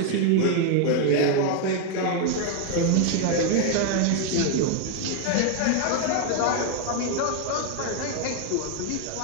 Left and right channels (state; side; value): different; both; correlation 0.01